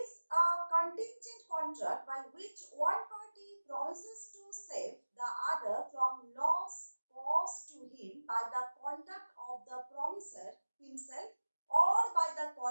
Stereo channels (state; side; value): inverted; both; correlation -1.00